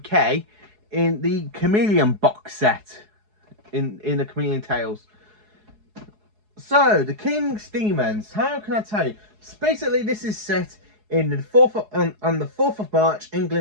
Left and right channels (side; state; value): left; late; 4.7 ms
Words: in the Chameleon box set, in the Chameleon Tales. So The King's Demons, how can I tell you? So basically, this is set in the on the 4th of March,